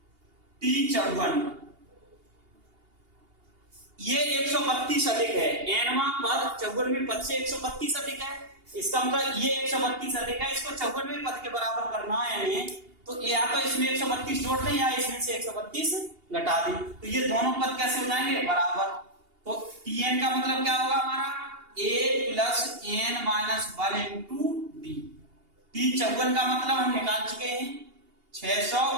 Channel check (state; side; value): late; left; 2.8 ms